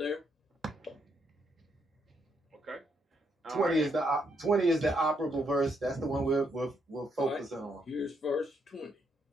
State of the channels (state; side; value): normal; both; correlation 0.75